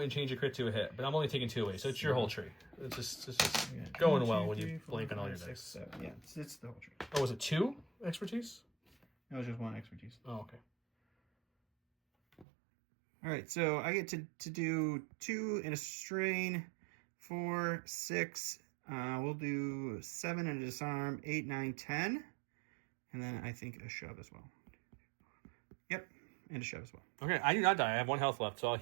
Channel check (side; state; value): left; drops out; at 12.5 s